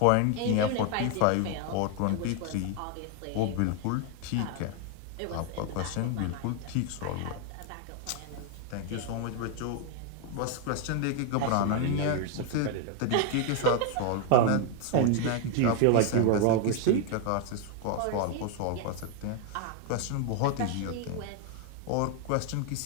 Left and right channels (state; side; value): different; both; correlation 0.01